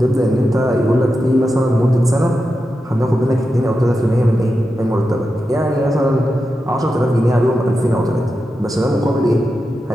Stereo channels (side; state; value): both; normal; correlation 0.89